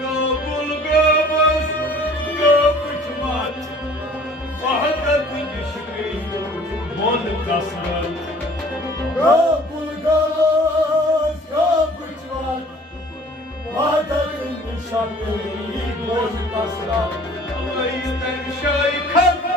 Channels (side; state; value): both; normal; correlation 0.51